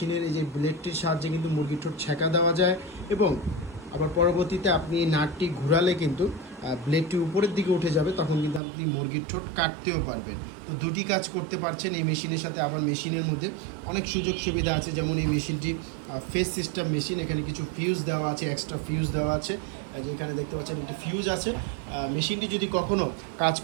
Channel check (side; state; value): left; drops out; at 8.6 s